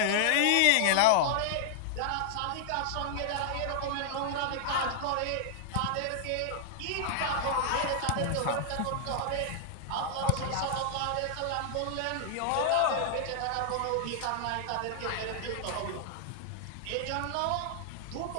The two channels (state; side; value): different; both; correlation -0.01